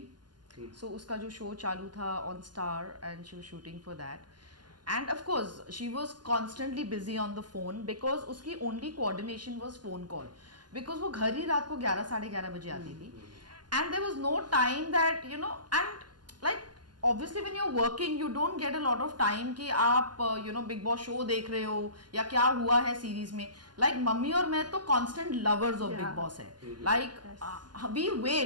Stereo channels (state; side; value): late; left; 0.71 ms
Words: सो उसका जो शो चालू था on Star and she was shooting for that and of course she was constantly busy on the phone because उसकी only coordination was phone call because वो घर ही रात को 11 साढ़े 11 बजे आती थी and there was no time that you know and like obviously when you're working you don't get a lot of time कि आप you know big boss show देख रहे हो या क्या हुआ है सीरीज में लाइक मम्मी और मैं तो constant lovers of Bigg Boss है लाइक वी